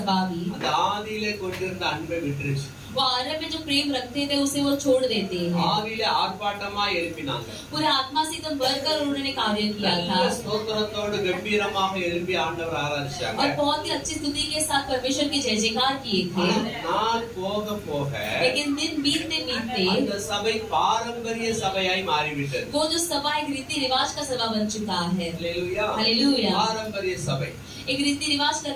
भी அந்த ஆதியிலே கொண்டிருந்த அன்பை விட்டுருச்சு. वो आरंभ में जो प्रेम रखते थे उसे वो छोड़ देते हैं। ஆதியிலே ஆர்ப்பாட்டமா எழுப்பினாங்க. पूरे आत्मा से एकदम भरकर उन्होंने कार्य किया था நல்ல ஸ்தோத்திரத்தோடு கம்பீரமாக எழுப்பி ஆண்டவர் ஆராதிச்சாங்க. और बहुत ही अच्छी स्तुति के साथ परमेश्वर की जय जयकार किए थे। நாள் போக போக लेकिन दिन बीतते बीतते அந்த சபை பாரம்பரிய சபையாய் மாறிவிட்டது. वो जो सभा एक रीति रिवाज का सभा बन चुका है। அல்லேலூயா. हालेलुया। பாரம்பரிய சபை, एक रीति रिवाज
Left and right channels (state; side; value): identical; both; correlation 1.00